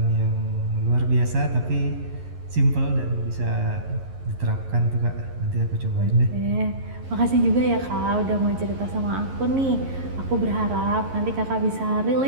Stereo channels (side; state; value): left; late; 11 ms